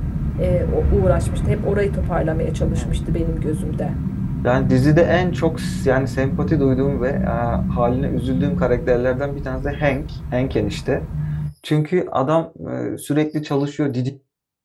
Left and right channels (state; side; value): identical; both; correlation 1.00